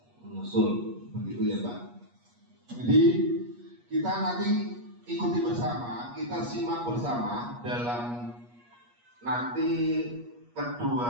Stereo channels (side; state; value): left; late; 8.3 ms